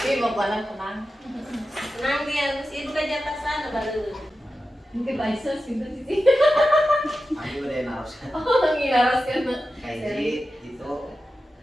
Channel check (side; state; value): both; normal; correlation 0.92